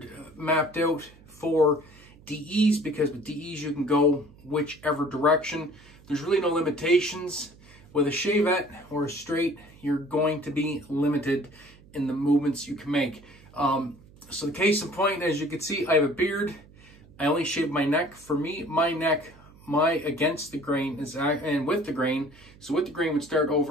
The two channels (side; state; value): right; noise; hum, 24 dB below the sound